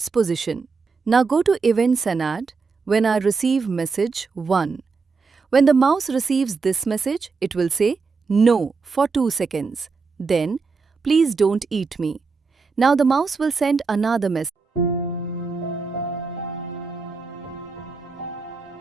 position. Now go to Events and add When I receive message 1. When the mouse receives this message, it will say No for 2 seconds. Then, please don't eat me. Now the mouse will send another message.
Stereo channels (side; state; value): left; quieter; 4.6 dB